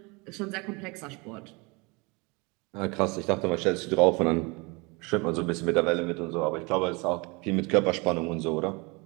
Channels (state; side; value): quieter; left; 27.9 dB